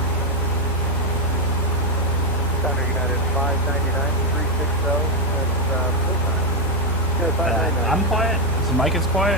Southern United 599, 360, that's full time. Yeah, 599. I'm quiet. The mic is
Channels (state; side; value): noise; right; hum, 5 dB below the sound